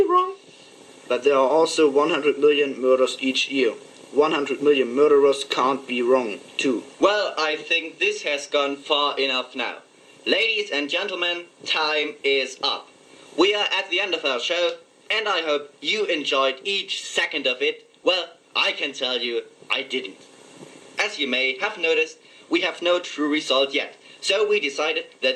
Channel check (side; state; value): both; identical; correlation 1.00